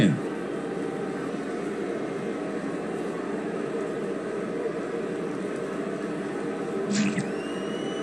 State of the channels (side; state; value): left; noise; hum, 27 dB below the sound